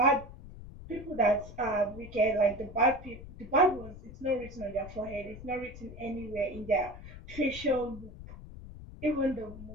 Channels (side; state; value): left; noise; rumble, 14 dB below the sound